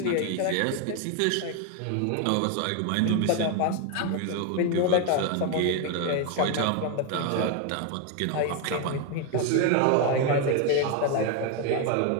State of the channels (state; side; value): different; both; correlation 0.01